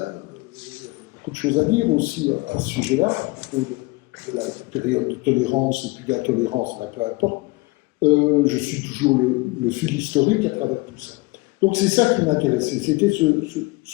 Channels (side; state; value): right; quieter; 23.6 dB